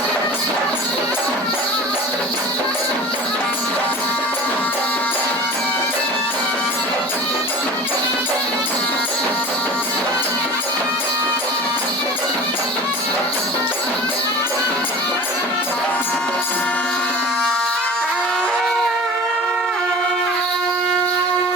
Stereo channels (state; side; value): normal; both; correlation 0.37